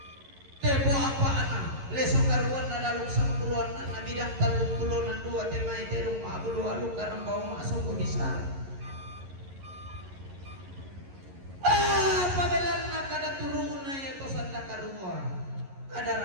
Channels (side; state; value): left; late; 11 ms